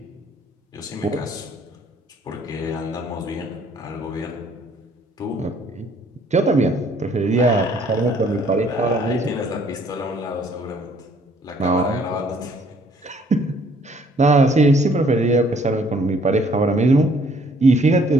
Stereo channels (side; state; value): both; normal; correlation 0.61